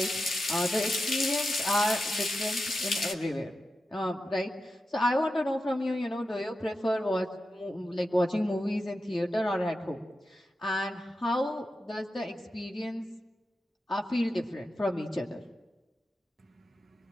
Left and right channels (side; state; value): both; normal; correlation 0.90